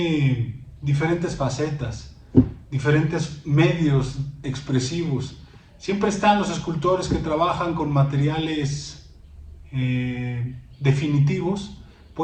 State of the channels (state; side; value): identical; both; correlation 1.00